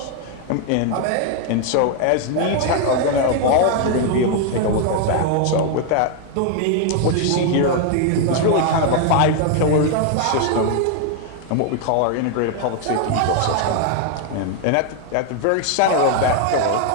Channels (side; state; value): both; different; correlation 0.00